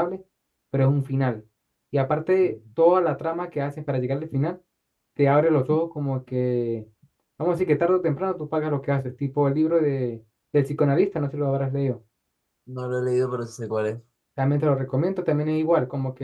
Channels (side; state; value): both; identical; correlation 1.00